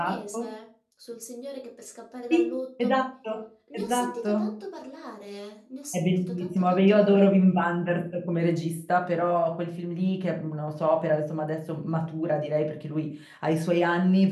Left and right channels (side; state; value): both; identical; correlation 1.00